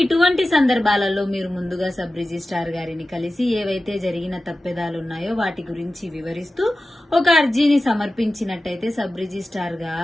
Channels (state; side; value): normal; both; correlation 0.94